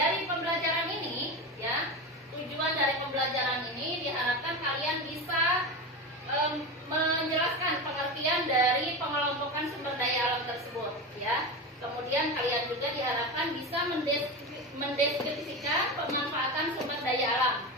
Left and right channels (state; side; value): normal; both; correlation 0.22